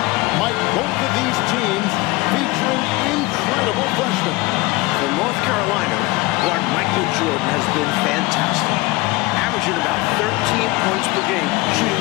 Mike, both of these teams featuring incredible freshmen. For North Carolina, guard Michael Jordan has been fantastic. Averaging about 13 points per game,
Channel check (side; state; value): right; quieter; 21.8 dB